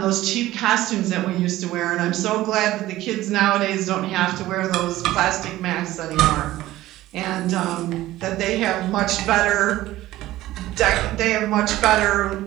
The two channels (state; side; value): quieter; left; 15.9 dB